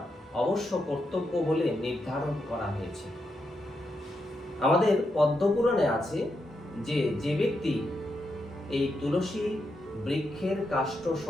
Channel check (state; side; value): normal; both; correlation 0.84